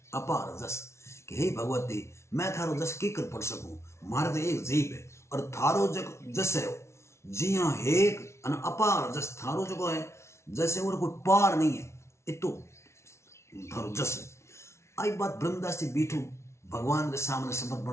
अपार जस कि हे भगवती मैं थारो जस की कर पढ़ सकूं, मारे तो एक जीव है और थारो जस है। जी हाँ हे अन अपार जस थारो जो है जैसे और कोई पार नहीं है, इतो थारो जस है। आई बात ब्रह्मदास जी बीठू भगवान के सामने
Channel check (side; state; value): right; late; 0.13 ms